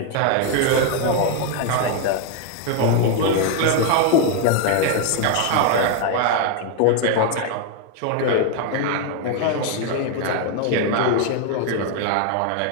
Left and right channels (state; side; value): different; both; correlation 0.01